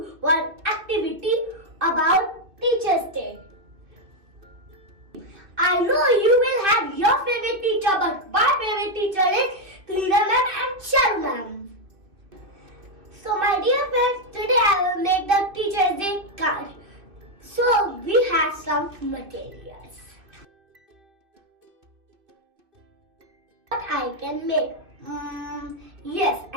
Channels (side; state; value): left; late; 2.6 ms